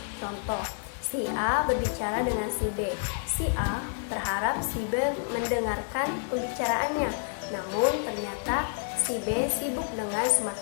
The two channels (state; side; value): silent; right; digital silence